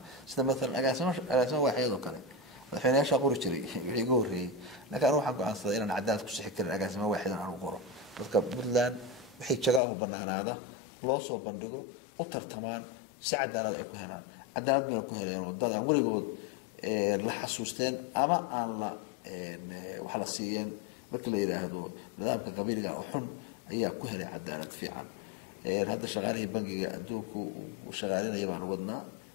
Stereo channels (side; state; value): right; drops out; at 9.8 s